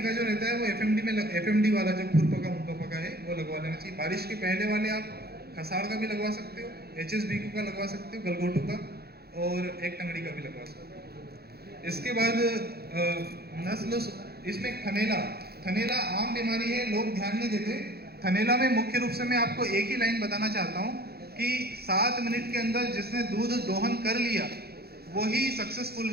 जो रहता है वो एफएमडी वाला जो खुरपका मुंहपका है वो लगवा लेना चाहिए। बारिश के पहले वाले आप खसाड़ का भी लगवा सकते हो, HSBQ का लगवा सकते हो, गलघोटू का, और एक टंगड़ी का भी लगवा सकते हो। इसके बाद नस्ल, इसमें थनेला आम बीमारी है, लोग ध्यान नहीं देते। थनेला में मुख्य रूप से मैं आपको एक ही लाइन बताना चाहता हूँ कि 7 मिनट के अंदर जिसने दूध दोहन कर लिया वही सक्सेसफुल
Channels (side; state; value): left; late; 0.46 ms